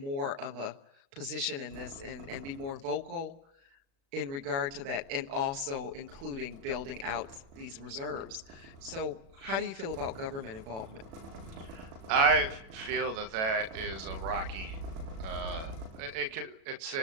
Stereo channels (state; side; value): late; left; 36 ms